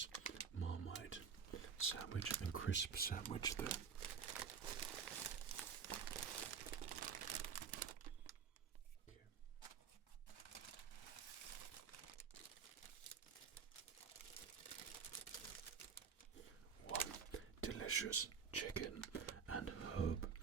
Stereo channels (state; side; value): quieter; left; 6.4 dB